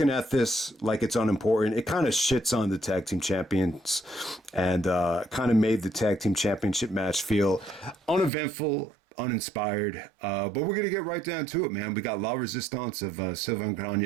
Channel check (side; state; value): left; drops out; at 8.3 s